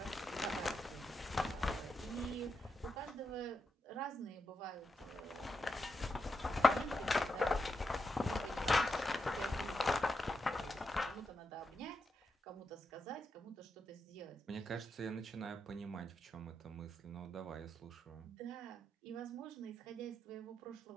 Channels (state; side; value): normal; both; correlation 0.85